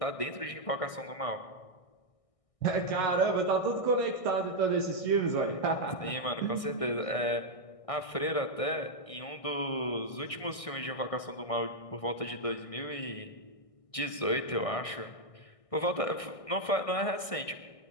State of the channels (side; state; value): right; late; 1.6 ms